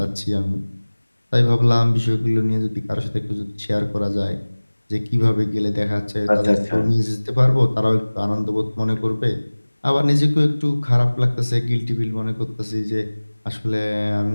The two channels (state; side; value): inverted; both; correlation -1.00